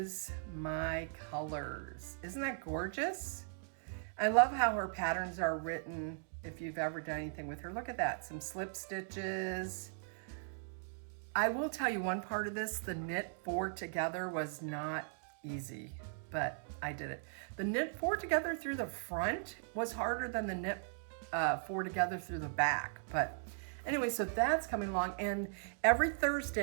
my colors. Isn't that gorgeous? I love how her patterns are written. If you've ever done anything with her, look at that. Some slip stitches. I will tell you one part of this, the knit 4 together was not easy, but I did it. The knit 4 together through the front was harder than the knit 4 together through the back. But anyway, so that's coming along. And every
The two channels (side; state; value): left; silent; digital silence